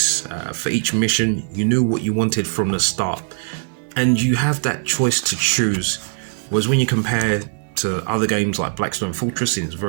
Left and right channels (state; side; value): silent; left; digital silence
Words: for each mission. You knew what you wanted from the start, and you have that choice to choose. Whereas when you compare to other games like Blackstone Fortress, it's